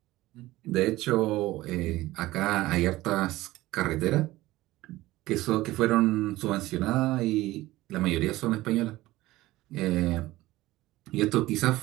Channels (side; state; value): left; quieter; 17.7 dB